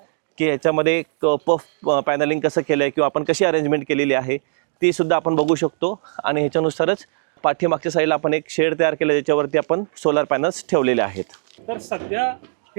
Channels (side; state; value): left; silent; digital silence